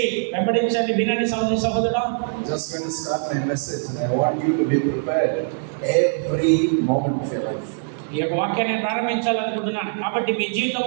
వెంబడించండి, వినండి సహోదరి సహోదరుడా. I'm just going to start my message and I want you to be prepared every moment of your life. ఈ యొక్క వాక్యాన్ని ప్రారంభించాలనుకుంటున్నాను కాబట్టి మీ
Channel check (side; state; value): left; silent; digital silence